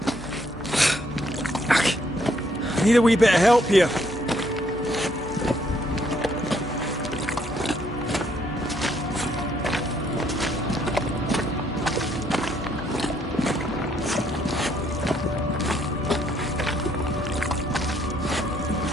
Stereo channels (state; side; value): normal; both; correlation 0.69